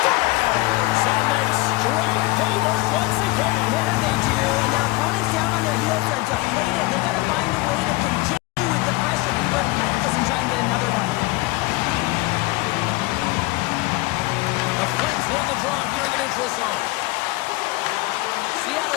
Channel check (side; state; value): right; quieter; 21.6 dB